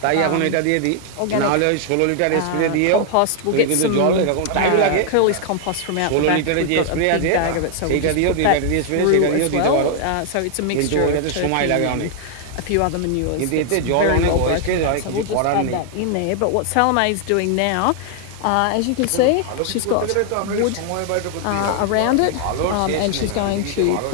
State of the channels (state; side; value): different; both; correlation 0.00